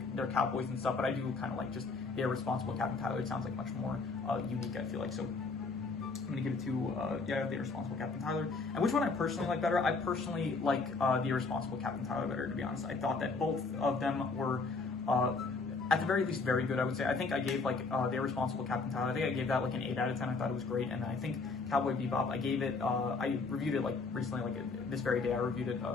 they're cowboys and stuff. But I do kind of like just the Irresponsible Captain Tylor. It sounds like much more unique, I feel like. So I'm gonna give it to the Irresponsible Captain Tylor. And which one I personally like better? I personally like the Irresponsible Captain Tylor better, to be honest. I thought that both of them were at the very least very good, I would say. I think I gave like the Irresponsible Captain Tylor, I think I gave that like an 8 out of 10. I thought it was great. And then I think Cowboy Bebop, I gave it, I reviewed it like recently, like this very day I reviewed it,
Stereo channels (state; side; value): quieter; right; 4.1 dB